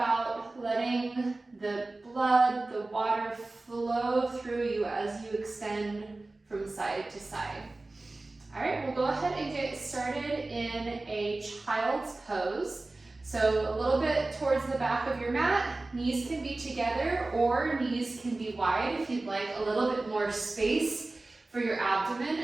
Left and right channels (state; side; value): quieter; left; 3.1 dB